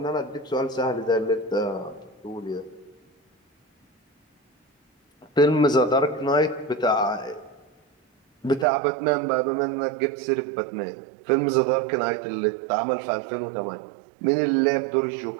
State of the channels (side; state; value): left; drops out; at 8.7 s